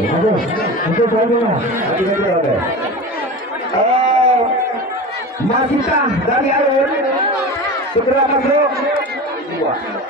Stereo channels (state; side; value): normal; both; correlation 0.30